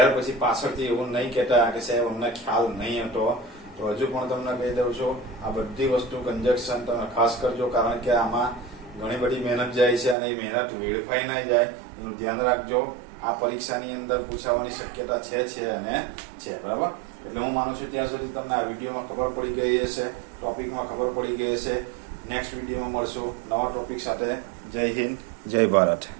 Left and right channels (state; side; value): drops out; left; at 10.2 s